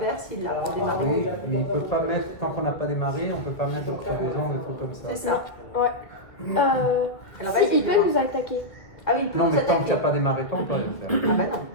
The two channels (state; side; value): late; right; 1.7 ms